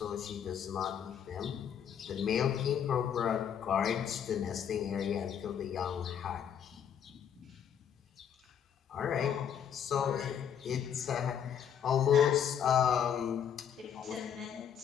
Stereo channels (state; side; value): quieter; right; 8.5 dB